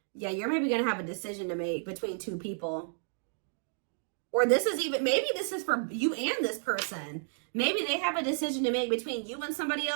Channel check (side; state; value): left; silent; digital silence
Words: Yeah, you're maybe going to have a decision to make between two people. Or maybe this is for you and this person. Maybe they have a decision to make between you and somebody